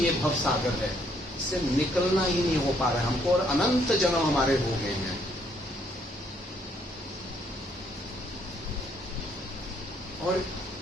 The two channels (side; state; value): both; normal; correlation 0.69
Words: ये भवसागर है। इससे निकलना ही नहीं हो पा रहा है हमको, और अनंत जन्म हमारे हो गए हैं। और